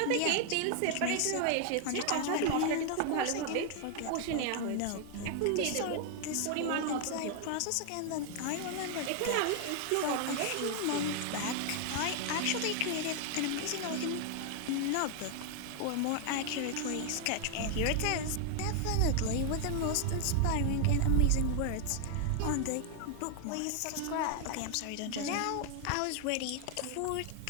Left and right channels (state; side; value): different; both; correlation 0.00